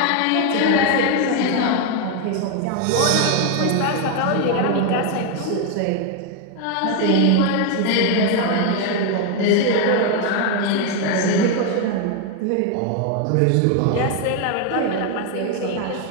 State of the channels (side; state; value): both; different; correlation 0.01